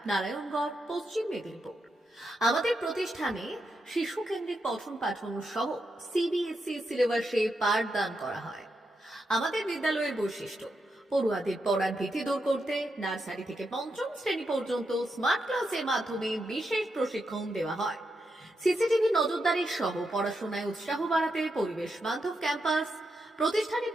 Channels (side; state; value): both; normal; correlation 0.84